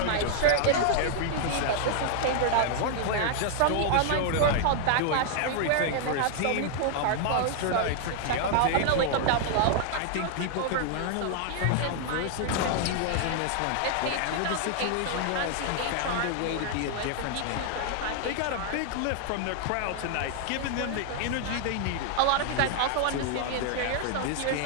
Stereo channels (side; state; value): both; different; correlation 0.00